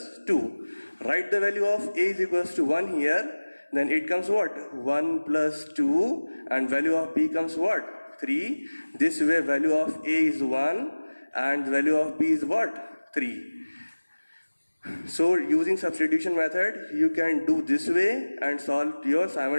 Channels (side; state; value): both; inverted; correlation -1.00